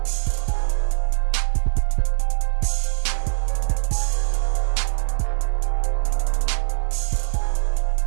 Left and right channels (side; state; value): left; silent; digital silence